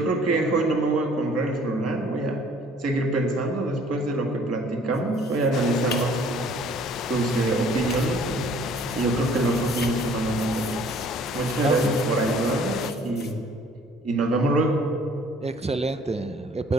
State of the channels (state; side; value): normal; both; correlation 0.55